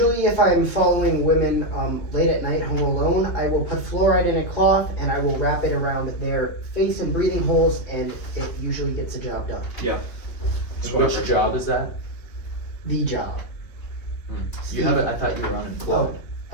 if I'm following women late at night home alone, I will put fluoride in a cloth and I will wrap it around their face and breathing holes, and it usually gets the job done. Yeah. Which job is that? The job. You have it. I thought you were unemployed.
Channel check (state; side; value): late; right; 3.1 ms